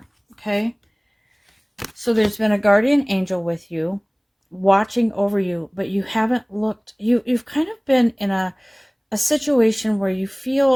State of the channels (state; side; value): identical; both; correlation 1.00